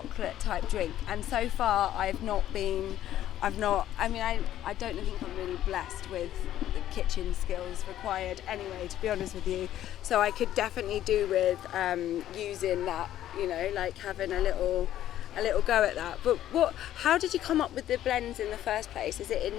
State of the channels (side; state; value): right; quieter; 12.3 dB